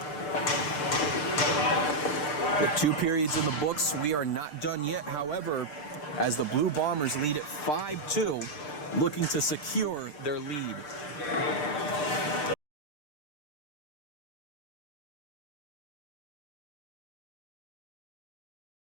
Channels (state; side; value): late; right; 6.7 ms